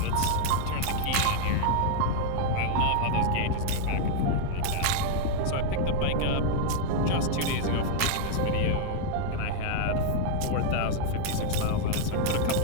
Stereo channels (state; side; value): different; both; correlation 0.00